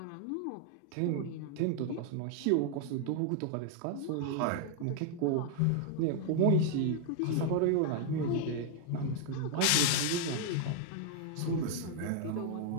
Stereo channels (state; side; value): different; both; correlation 0.00